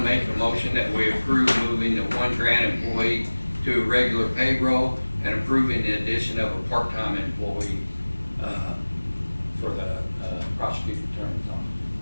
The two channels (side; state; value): both; inverted; correlation -1.00